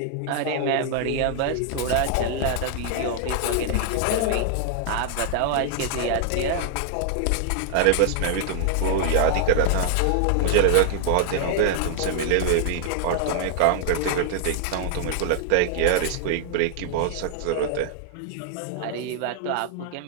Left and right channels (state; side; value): different; both; correlation 0.00